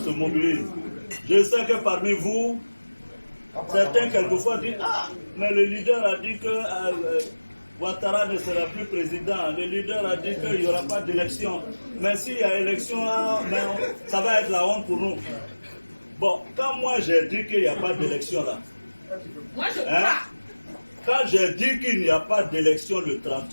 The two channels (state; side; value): inverted; both; correlation -1.00